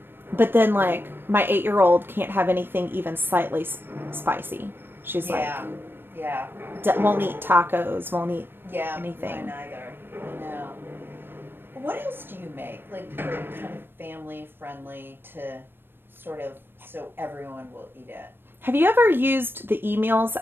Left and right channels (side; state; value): left; late; 0.099 ms